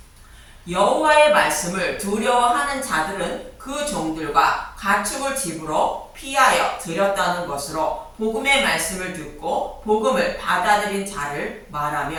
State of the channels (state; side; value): identical; both; correlation 1.00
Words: 여호와의 말씀을 두려워하는 자들은 그 종들과 가축을 집으로 피하여 들였다는 것으로 복음의 말씀을 듣고 복음을 받아들인 자를